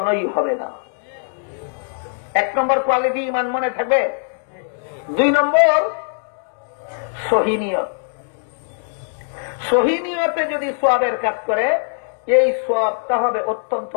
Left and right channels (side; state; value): right; silent; digital silence